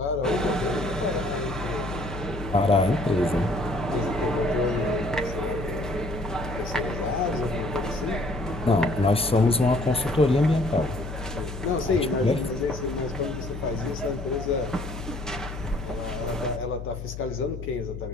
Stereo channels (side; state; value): left; noise; hum, 9 dB below the sound